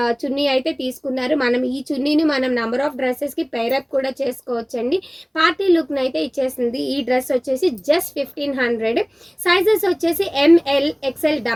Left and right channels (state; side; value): identical; both; correlation 1.00